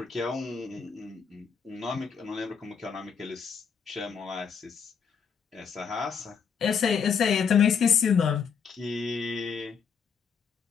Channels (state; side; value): quieter; right; 6.5 dB